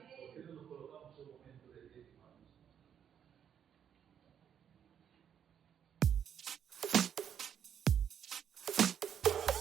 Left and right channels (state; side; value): quieter; left; 8.7 dB